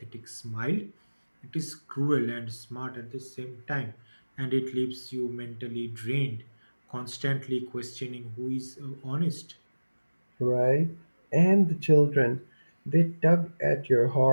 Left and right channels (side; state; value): both; inverted; correlation -1.00